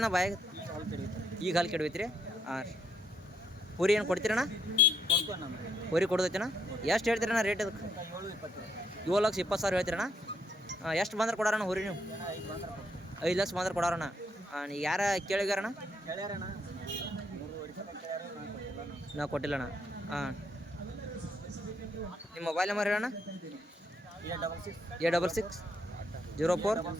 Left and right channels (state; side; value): normal; both; correlation 0.74